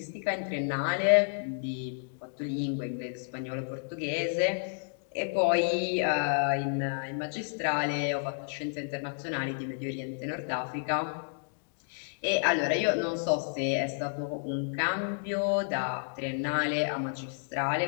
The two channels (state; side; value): silent; right; digital silence